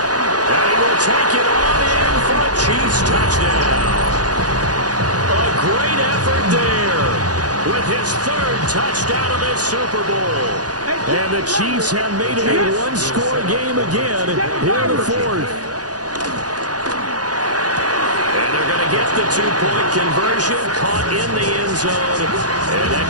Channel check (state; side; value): late; left; 0.68 ms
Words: And he will take it on in for a Chiefs touchdown. A great effort there with his 3rd touchdown of this Super Bowl. And the Chiefs have made it a 1-score game again here in the 4th. And they're going to get the 2-point conversion, caught in the end zone. And